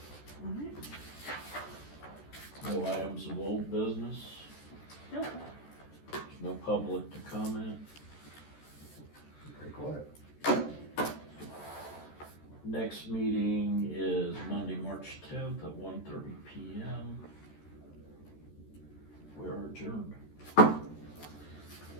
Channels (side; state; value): right; late; 14 ms